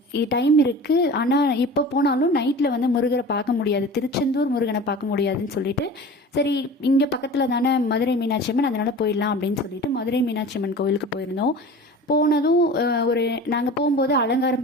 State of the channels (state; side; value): normal; both; correlation 0.37